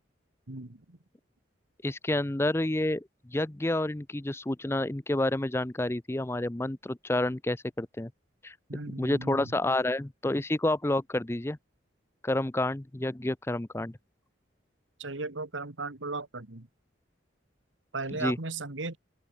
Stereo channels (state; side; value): normal; both; correlation 0.74